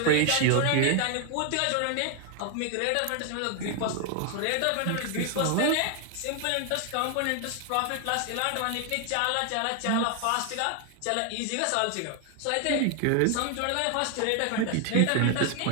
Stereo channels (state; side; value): different; both; correlation 0.00